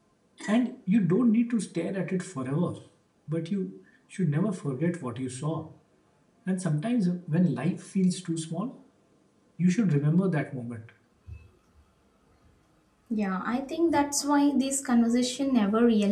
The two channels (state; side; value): identical; both; correlation 1.00